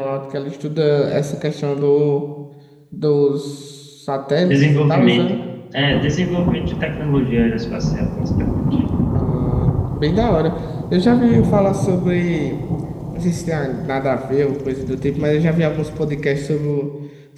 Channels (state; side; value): identical; both; correlation 1.00